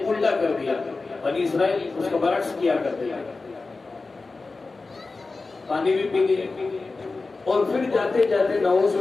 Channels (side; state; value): right; quieter; 3.8 dB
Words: الٹا کر دیا، بنی اسرائیل اس کا برعکس کیا کرتے ہیں، پانی بھی پی لیے۔ اور پھر جاتے جاتے نعوذ